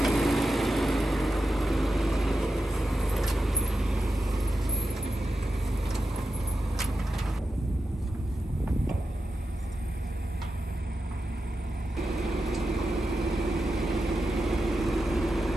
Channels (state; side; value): normal; both; correlation 0.90